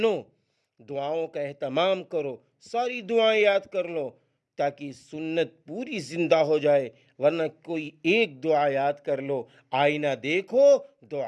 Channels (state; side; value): identical; both; correlation 1.00